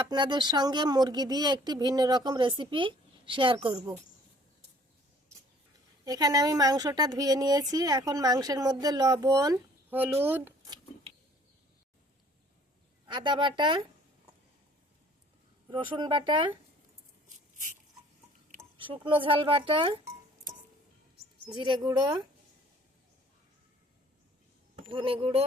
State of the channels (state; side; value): normal; both; correlation 0.55